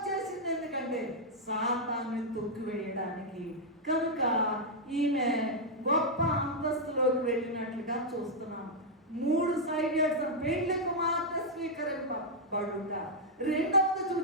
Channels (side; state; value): both; normal; correlation -0.04